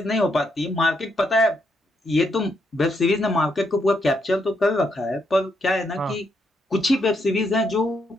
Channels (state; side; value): normal; both; correlation 0.78